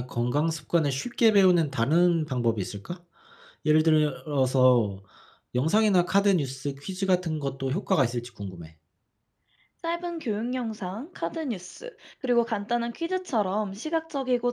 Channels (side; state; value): both; identical; correlation 1.00